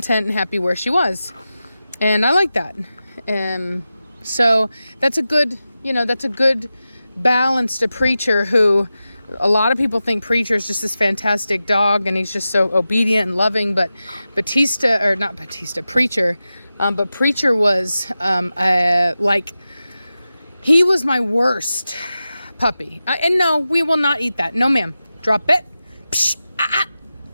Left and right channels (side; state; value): both; inverted; correlation -0.93